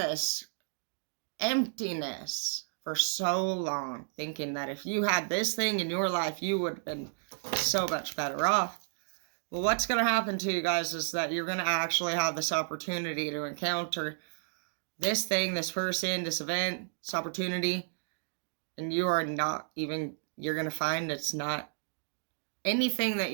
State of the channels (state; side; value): silent; left; digital silence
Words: emptiness for so long. Thinking that if you had this thing in your life, you would have been so much better off. Well, what's going to happen to you guys is that you're going to actually have this opportunity to encounter this thing, this person, this event, this opportunity. And you are not even, you're going to find it's not anything that